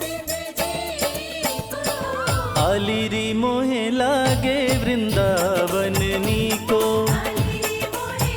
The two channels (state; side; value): identical; both; correlation 1.00